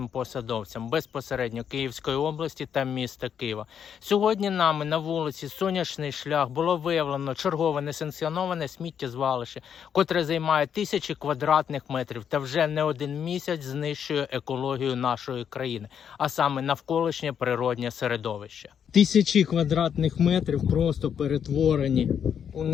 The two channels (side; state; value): right; quieter; 8.1 dB